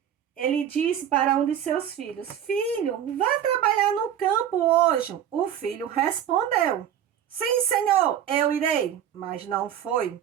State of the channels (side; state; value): left; quieter; 10.0 dB